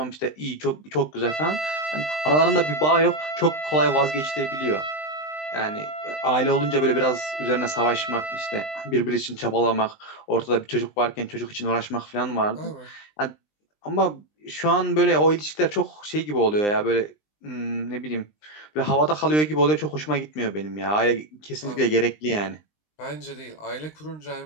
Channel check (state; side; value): late; right; 20 ms